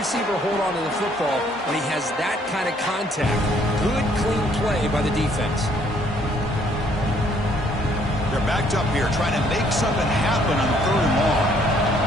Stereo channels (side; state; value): both; normal; correlation 0.65